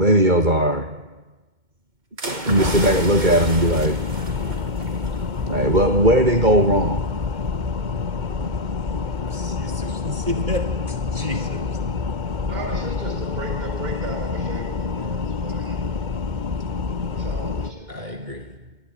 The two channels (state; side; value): late; left; 2.2 ms